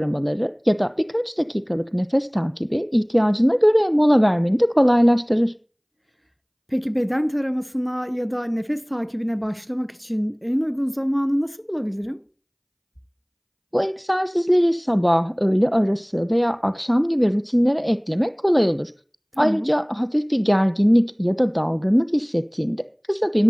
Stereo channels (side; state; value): both; identical; correlation 1.00